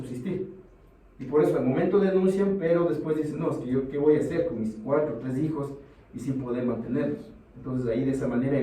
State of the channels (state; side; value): identical; both; correlation 1.00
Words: Y por eso al momento denuncian, pero después dicen, no, es que yo qué voy a hacer con mis 4 o 3 hijos y sin poder mantenerlos. Entonces ahí de esa manera